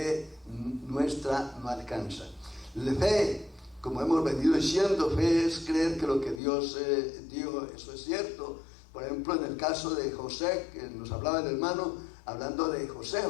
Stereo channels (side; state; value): right; drops out; at 6.4 s